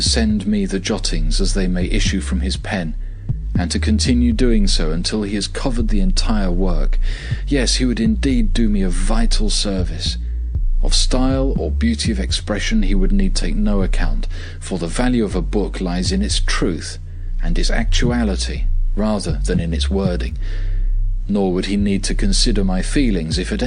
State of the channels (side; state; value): both; identical; correlation 1.00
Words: send me the jottings as they may issue from his pen, and to continue doing so until he has covered the entire work. Yes, he would indeed do me a vital service. Of style or beauty of expression he would need take no account, for the value of a book lies in its truth and its actuality rather than in its wording. Nor would he need to consider my feelings if at